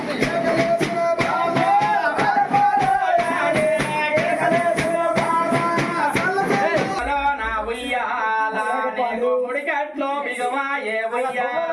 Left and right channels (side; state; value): both; identical; correlation 1.00